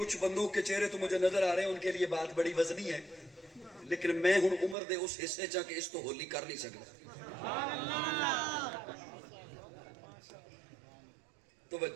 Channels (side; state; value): left; drops out; at 4.8 s